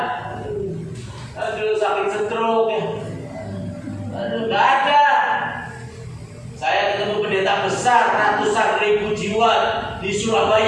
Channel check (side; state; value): both; identical; correlation 1.00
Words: Aduh sakit stroke ya. Aduh nggak ada. Saya ketemu pendeta besar, ratusan ribu jiwa di